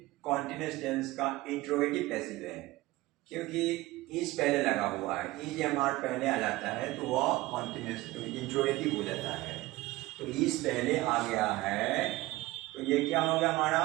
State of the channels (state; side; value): quieter; left; 19.0 dB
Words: कॉन्टिन्यूअस टेंस का इंट्रोगेटिव पैसिव है क्योंकि इज पहले लगा हुआ है, इज एम आर पहले आ जाता है तो वह कॉन्टिन्यूअस इंट्रोगेटिव हो जाता है। तो इज पहले आ गया है तो ये क्या हो गया, हमारा